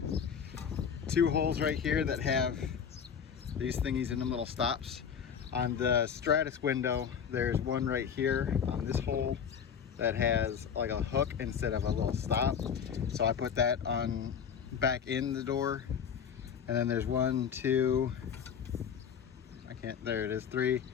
two holes right here that have these thingies in them, little stops. On the Stratus window, there's one right here on this hole that has like a hook instead of a little stop. So I put that on back in the door. And then there's one, two, there it is, 3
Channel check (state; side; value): quieter; right; 7.4 dB